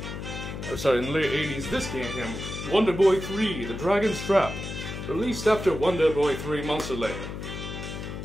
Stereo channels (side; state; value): left; noise; hum, 7 dB below the sound